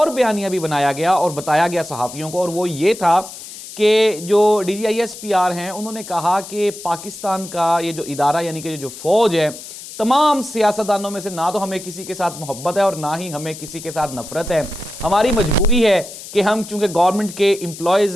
बयानिया भी बनाया गया और बताया गया सहाफ़ियों को, और वो ये था कि जो DGISPR हैं, उन्होंने कहा कि पाकिस्तान का ये जो इदारा यानी कि जो फ़ौज है, तमाम सियासतदानों में से ना तो हमें किसी के साथ मोहब्बत है और ना ही हमें किसी के साथ नफरत है। हमारी मजबूरी है कि हम चूँकि गवर्नमेंट के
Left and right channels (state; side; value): noise; left; hiss, 13 dB below the sound